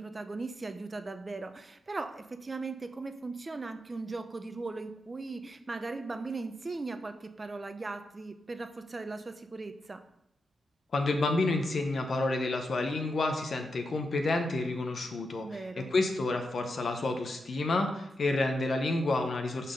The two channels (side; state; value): both; normal; correlation 0.86